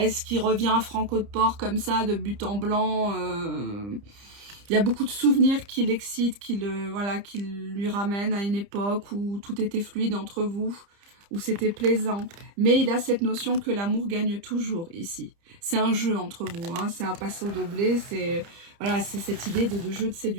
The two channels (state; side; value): late; left; 30 ms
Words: qu'il revient franco de port comme ça, de but en blanc? Il y a beaucoup de souvenirs qui l'excitent, qui lui ramènent à une époque où tout était fluide entre vous, où c'était plaisant. Mais il a cette notion que l'amour gagne toujours ici. C'est un jeu entre vous, hein, c'est un passo doblé, c'est cette idée de jeu de